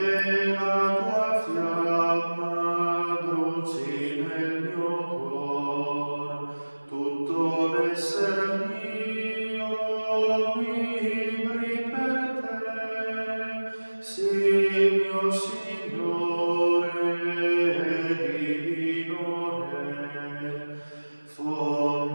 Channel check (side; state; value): both; inverted; correlation -1.00